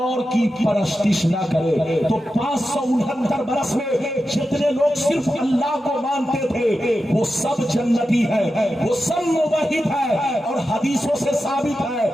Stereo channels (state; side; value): normal; both; correlation 0.91